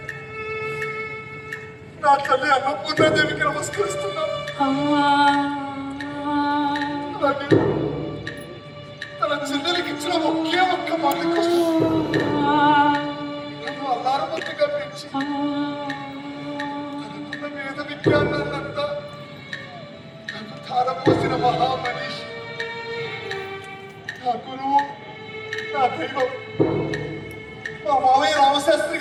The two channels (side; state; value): both; identical; correlation 1.00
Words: నా తల్లి అన్నపూర్ణాదేవికి నమస్కరిస్తున్నాను. అలాగే తన చెల్లెలికి ఇచ్చిన ఒకే ఒక్క మాట కోసం నన్ను అల్లారమంతిగా పెంచి తనకున్న వేద విజ్ఞానాన్నంతా నాకు ధారపోసిన మహామనీషి, నా గురువు, నా దైవం మా మావయ్య రామశాస్త్రి